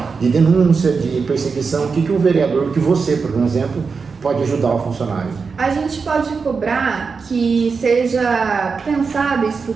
denúncia, de perseguição, o que o vereador, que você, por exemplo, pode ajudar o funcionário? A gente pode cobrar que seja pensado e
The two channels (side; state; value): left; quieter; 5.1 dB